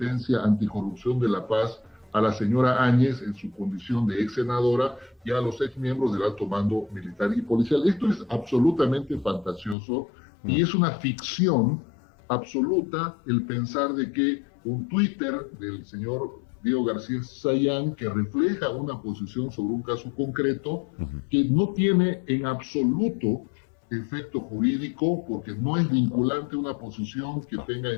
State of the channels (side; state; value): right; drops out; at 9.8 s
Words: anticorrupción de La Paz a la señora Áñez en su condición de ex senadora y a los ex miembros del alto mando militar y policial. Esto es absolutamente fantasioso y es una ficción absoluta el pensar de que un Twitter del señor Diego García Sayán, que refleja una posición sobre un caso concreto, que no tiene en absoluto efecto jurídico, porque no es vinculante una posición que tenga